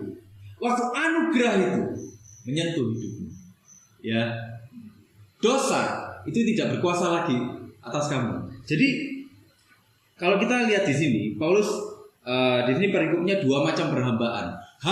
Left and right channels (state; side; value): identical; both; correlation 1.00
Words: waktu anugerah itu menyentuh hidupmu, ya, dosa itu tidak berkuasa lagi atas kamu. Jadi kalau kita lihat di sini, Paulus di sini perikopnya dua macam perhambaan.